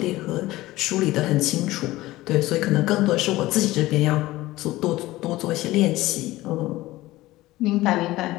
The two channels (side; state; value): right; quieter; 17.8 dB